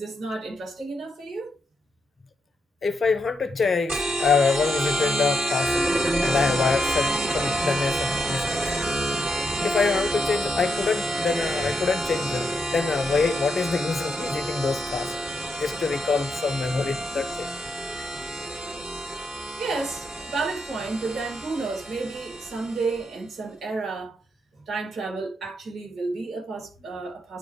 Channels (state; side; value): normal; both; correlation 0.82